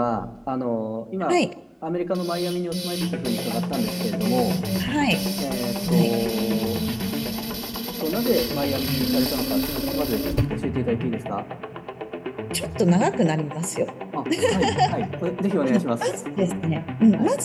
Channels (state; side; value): identical; both; correlation 1.00